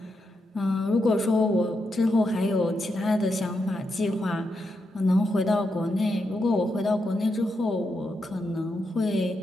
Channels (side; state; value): both; normal; correlation 0.84